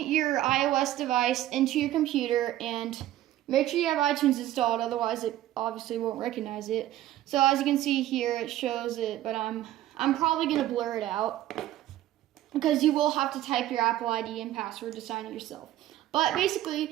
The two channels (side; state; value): left; quieter; 13.9 dB